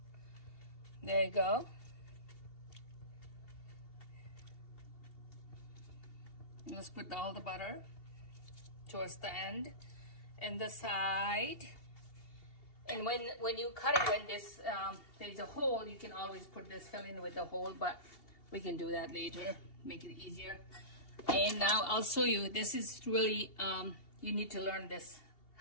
There you go. Let's put all the butter towards the end and the side. And when you cut it, when this there's a hole, you can always put this filling with the hole, but we can do that later, make it easier. And now I'll show you. This is really you need to learn this,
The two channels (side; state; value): right; late; 2.7 ms